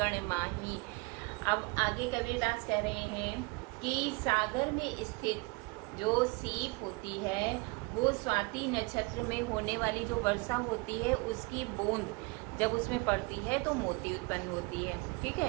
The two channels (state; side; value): quieter; left; 27.6 dB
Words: माही। अब आगे कबीरदास कह रहे हैं कि सागर में स्थित जो सीप होती है वो स्वाति नक्षत्र में होने वाली जो वर्षा होती है उसकी बूंद जब उसमें पड़ती है तो मोती उत्पन्न होती है। ठीक